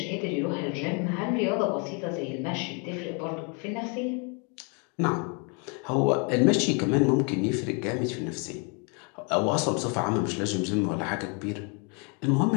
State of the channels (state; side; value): quieter; right; 35.6 dB